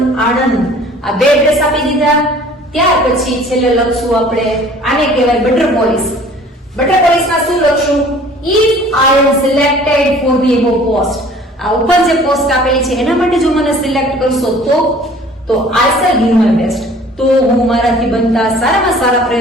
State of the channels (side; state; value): both; normal; correlation 0.50